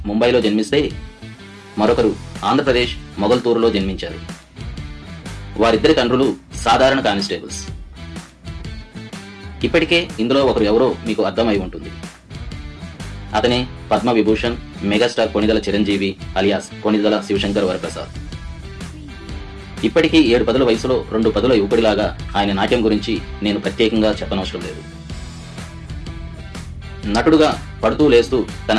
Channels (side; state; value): both; identical; correlation 1.00